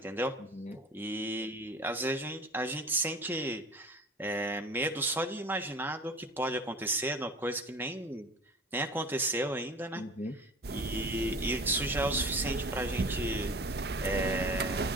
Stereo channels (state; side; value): normal; both; correlation 0.41